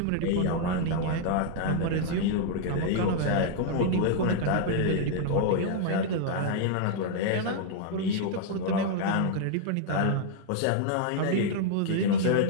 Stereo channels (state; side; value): different; both; correlation 0.00